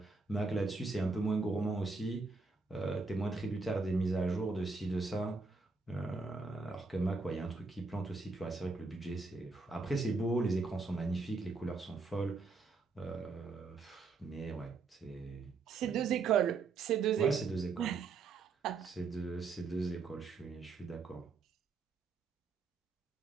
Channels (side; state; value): left; quieter; 4.1 dB